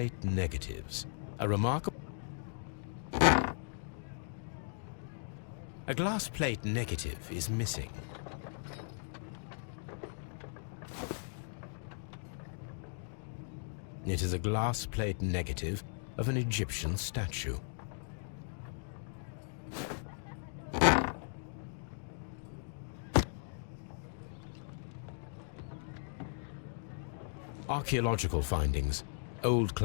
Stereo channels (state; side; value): silent; right; digital silence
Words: negatives. A remarkable... A glass plate negative is missing. It is a glass plate negative of an Egyptian statue. Archaeological findings. Old